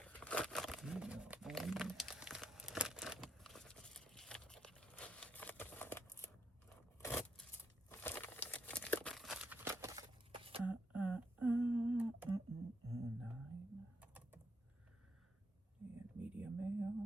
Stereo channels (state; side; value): normal; both; correlation 0.78